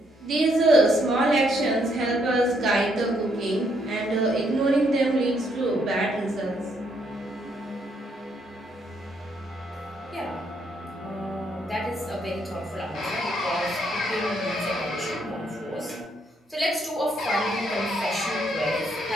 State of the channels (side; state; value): both; normal; correlation 0.73